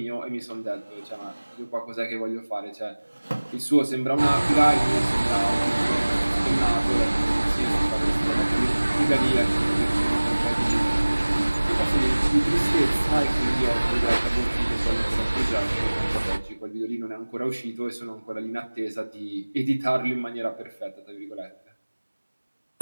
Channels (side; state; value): both; inverted; correlation -1.00